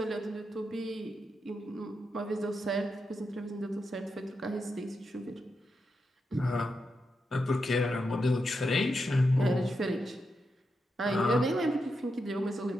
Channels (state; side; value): normal; both; correlation 0.86